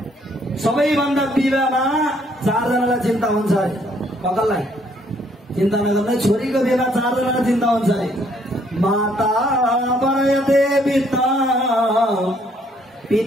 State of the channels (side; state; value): both; normal; correlation 0.66